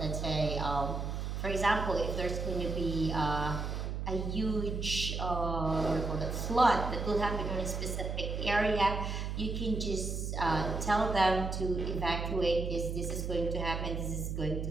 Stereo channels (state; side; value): noise; right; hum, 3 dB below the sound